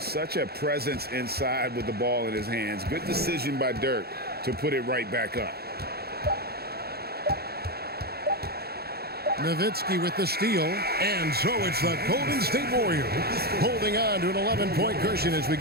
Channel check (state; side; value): late; left; 0.46 ms